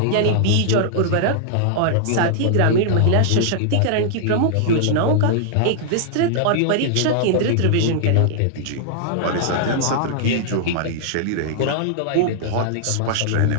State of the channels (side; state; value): both; different; correlation -0.01